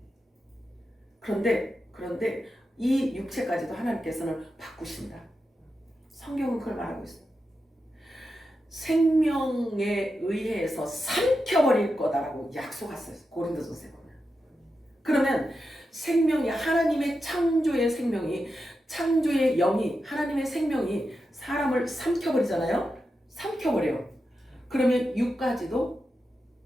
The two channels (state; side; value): normal; both; correlation 0.89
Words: 그런데 이 육체까지도 하나님께서는 바꾸신다. 성경은 그걸 말하고 있어요. 생명에 의해서 삼켜버릴 거다라고 약속했어요. 고린도전서에 보면. 그러면 생명이 하나님의 창조의 생명이 창조의 영이 하나님의 생명이 사람을 삼켜버리잖아요. 삼켜버려요. 그러면 육까지도